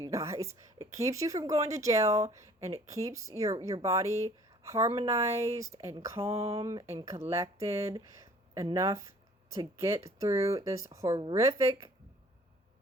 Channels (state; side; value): normal; both; correlation 0.53